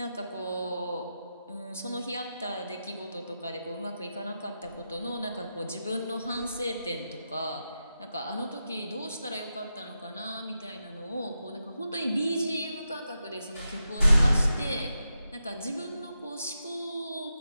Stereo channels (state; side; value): inverted; both; correlation -0.88